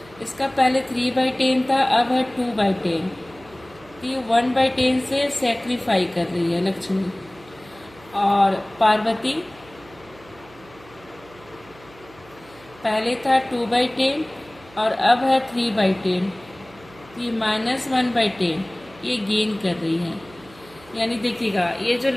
इसका पहले 3/10 था, अब है 2/10। ये 1/10 से सेक्रीफाई कर रही है लक्ष्मी। और पार्वती पहले था 2/10 और अब है 3/10, तो ये -1/10 ये गेन कर रही है। यानी देखिएगा ये जो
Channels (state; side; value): noise; right; hum, 24 dB below the sound